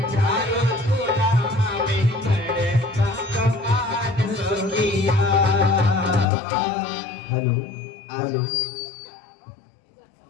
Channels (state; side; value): drops out; right; at 6.2 s